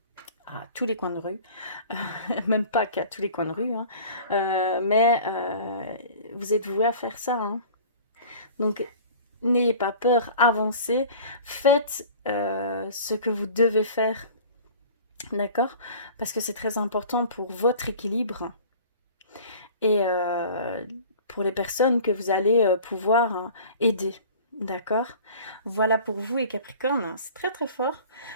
à tous les coins de rue, même pas qu'à tous les coins de rue, hein. Mais vous êtes voués à faire ça, hein. Donc n'ayez pas peur, avancez, faites ce que vous devez faire, d'accord? Parce que c'est très important pour votre équilibre et pour les personnes que vous allez pouvoir aider. D'accord? Voilà pour vous et Capricorne, c'est très très fort.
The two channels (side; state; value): both; inverted; correlation -0.44